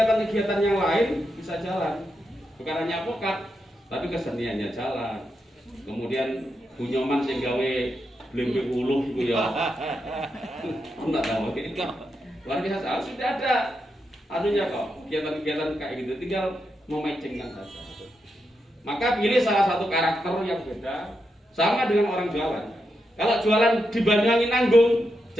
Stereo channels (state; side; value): normal; both; correlation 0.85